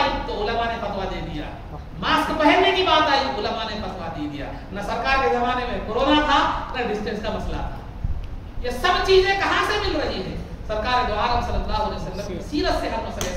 تو علماء نے فتویٰ دے دیا، ماسک پہننے کی بات آئی علماء نے فتویٰ دے دیا، نہ سرکار کے زمانے میں کورونا تھا نہ ڈسٹینس کا مسئلہ تھا۔ یہ سب چیزیں کہاں سے مل رہی ہیں؟ سرکار دو عالم صلی اللہ علیہ وسلم کی سیرت سے ہر مسئلے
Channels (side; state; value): both; identical; correlation 1.00